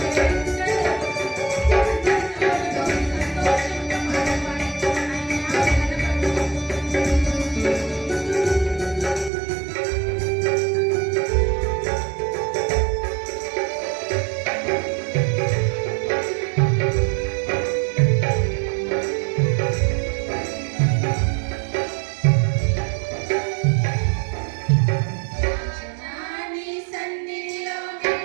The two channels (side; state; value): left; drops out; at 9.3 s